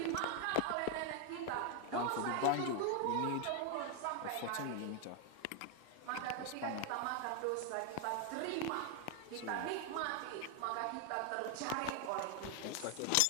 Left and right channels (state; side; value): different; both; correlation 0.01